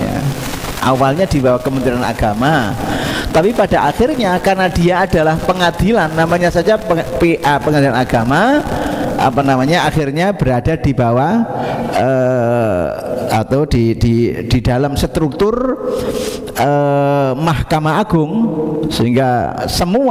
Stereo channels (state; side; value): identical; both; correlation 1.00